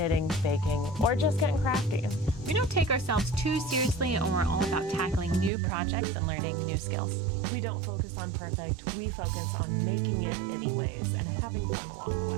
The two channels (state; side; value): drops out; left; at 5.5 s